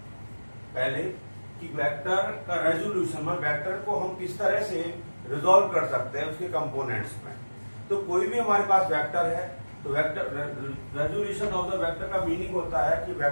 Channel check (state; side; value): inverted; both; correlation -1.00